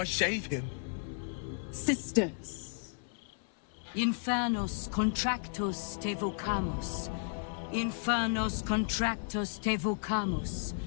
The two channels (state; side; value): silent; right; digital silence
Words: save him? Sisters. Infernos contractus te vocamus. Infernos contractus te vocamus.